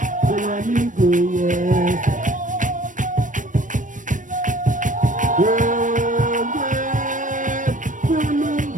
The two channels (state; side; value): late; left; 0.37 ms